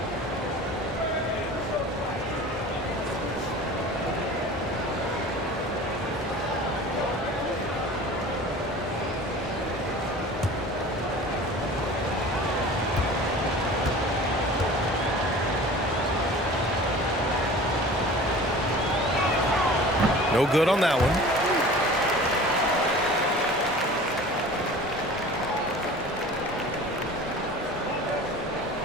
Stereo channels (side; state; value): both; normal; correlation 0.41